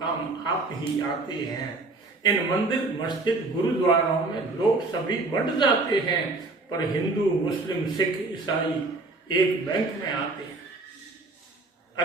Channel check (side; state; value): left; quieter; 3.3 dB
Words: काम आप ही आते हैं। इन मंदिर मस्जिद गुरुद्वारों में लोग सभी बढ़ जाते हैं, पर हिंदू मुस्लिम सिख ईसाई एक बैंक में आते हैं।